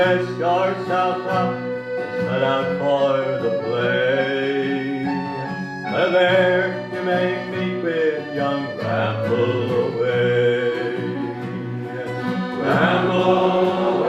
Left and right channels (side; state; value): both; identical; correlation 1.00